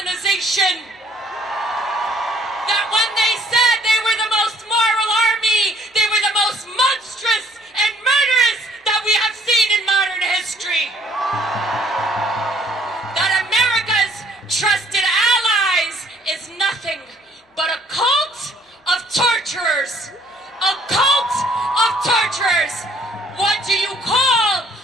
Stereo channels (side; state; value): both; normal; correlation 0.61